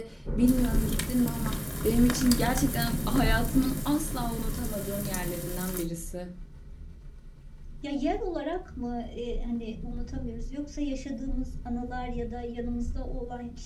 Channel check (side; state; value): both; identical; correlation 1.00